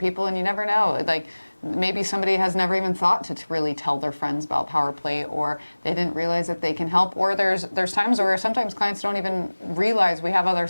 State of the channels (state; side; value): inverted; both; correlation -1.00